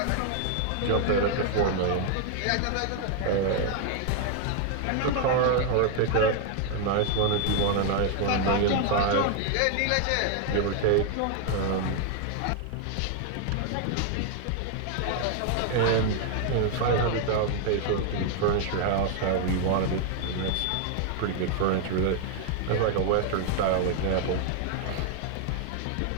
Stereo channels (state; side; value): different; both; correlation 0.00